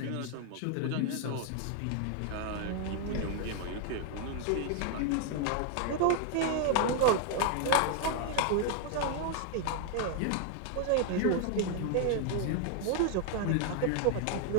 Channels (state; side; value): different; both; correlation 0.00